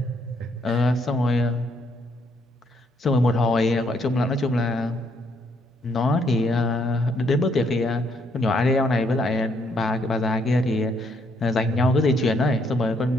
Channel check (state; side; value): normal; both; correlation 0.72